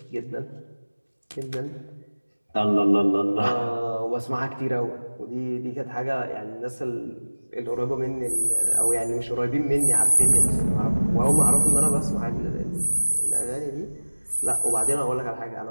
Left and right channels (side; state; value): both; inverted; correlation -1.00